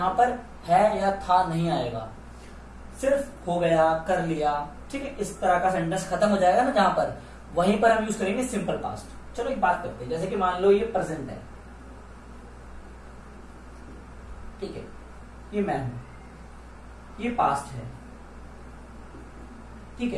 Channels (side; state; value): both; identical; correlation 1.00